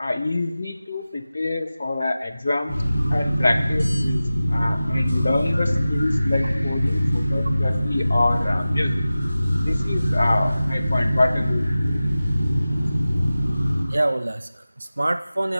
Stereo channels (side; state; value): both; inverted; correlation -0.95